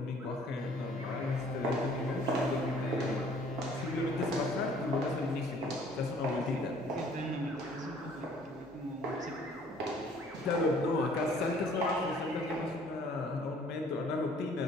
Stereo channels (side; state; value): both; normal; correlation 0.56